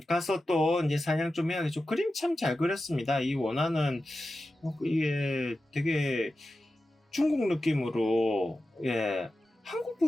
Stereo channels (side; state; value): both; normal; correlation 0.93